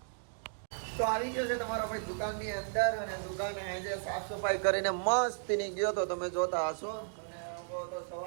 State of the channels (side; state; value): left; silent; digital silence